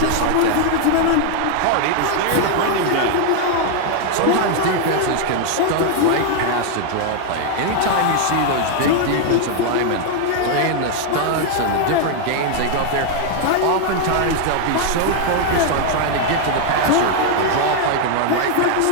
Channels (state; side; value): different; both; correlation 0.00